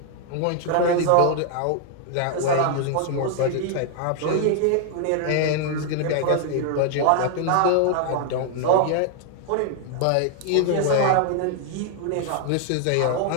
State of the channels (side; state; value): both; different; correlation 0.00